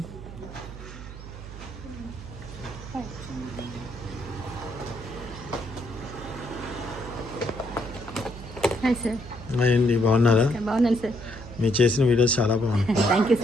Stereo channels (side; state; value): right; noise; hum, 13 dB below the sound